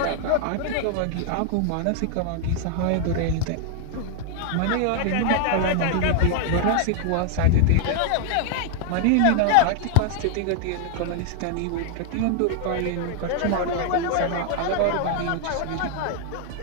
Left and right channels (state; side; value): different; both; correlation 0.00